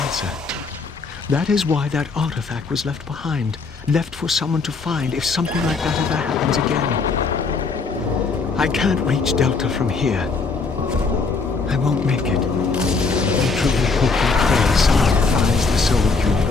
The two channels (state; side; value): quieter; right; 4.4 dB